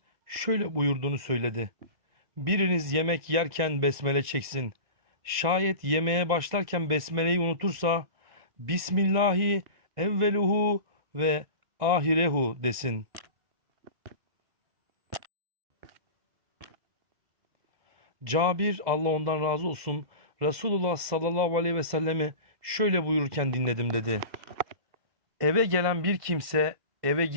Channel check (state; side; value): late; left; 2.0 ms